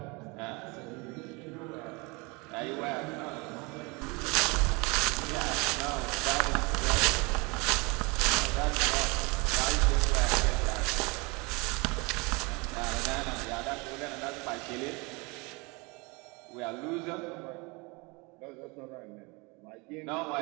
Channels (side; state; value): left; quieter; 27.5 dB